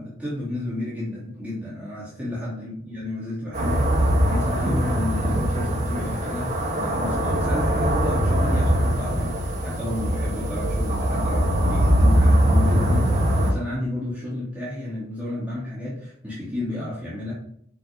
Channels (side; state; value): both; normal; correlation 0.79